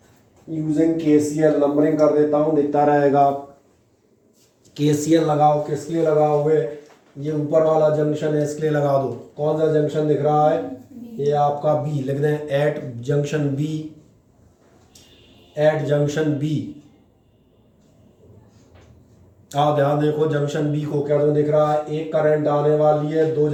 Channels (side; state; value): both; identical; correlation 1.00